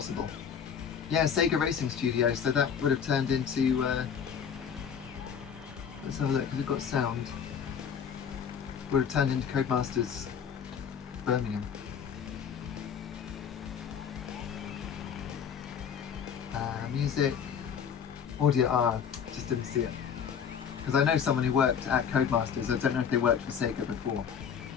Yeah, Sega Racing Studios, so that would have turned into... let's have a look, because we've got sound. Would have turned into Codemasters Birmingham. Music, audio, just didn't see it. Because I know someone who worked at Codemasters. I don't know if they worked for Sega before.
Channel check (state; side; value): quieter; right; 7.5 dB